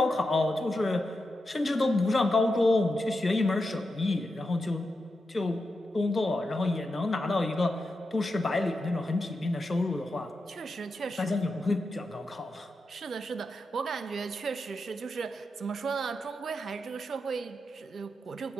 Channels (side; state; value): both; normal; correlation 0.88